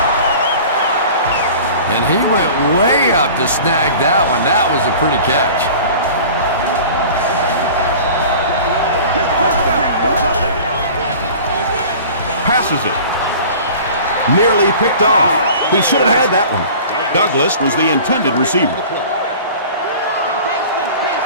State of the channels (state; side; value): inverted; both; correlation -0.41